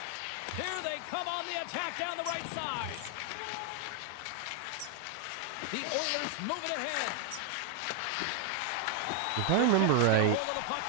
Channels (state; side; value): different; both; correlation 0.00